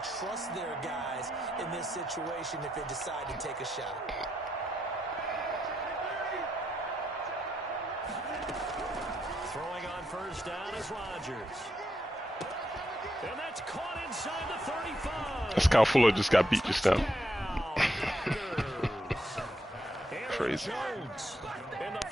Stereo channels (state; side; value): normal; both; correlation 0.80